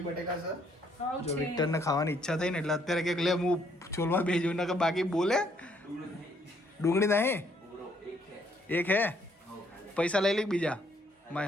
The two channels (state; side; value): normal; both; correlation 0.68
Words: બટેકા છે. જો વિક્ટરને ખાવાની ઈચ્છા થઈ ને એટલે અત્યારે કંઈક લે હું છોલવા બેસી ને કે બાકી બોલે. ડુંગળી નહીં, એક હે. પૈસા લઈ લે બીજા.